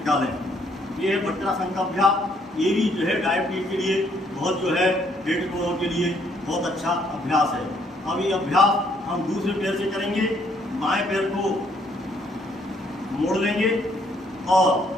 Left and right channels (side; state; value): both; normal; correlation 0.68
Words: लें। ये है वज्रासन का अभ्यास। ये भी जो है डायबिटीज के लिए बहुत जो है पेट रोगों के लिए बहुत अच्छा अभ्यास है। अब ये अभ्यास हम दूसरे पैर से करेंगे। बाएं पैर को मोड़ लेंगे और